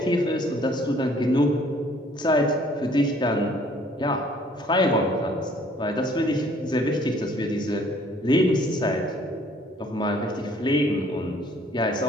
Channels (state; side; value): normal; both; correlation 0.59